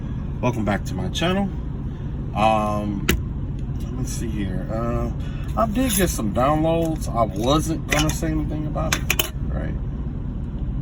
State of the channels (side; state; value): both; identical; correlation 1.00